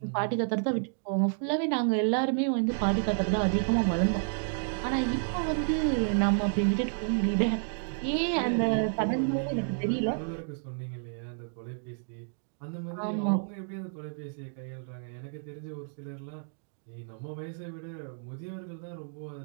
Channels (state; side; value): silent; left; digital silence